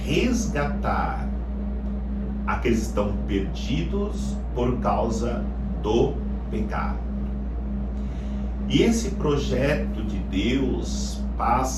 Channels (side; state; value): both; identical; correlation 1.00